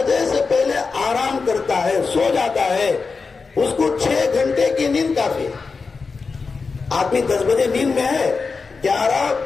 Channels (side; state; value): right; quieter; 4.6 dB